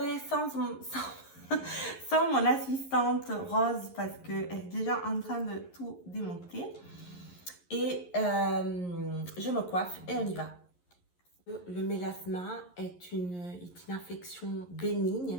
sans mon assistante Rose parce qu'elle est déjà en train de tout démonter. Et je me coiffe et on y va. Le mélasma est une infection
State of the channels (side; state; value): right; late; 11 ms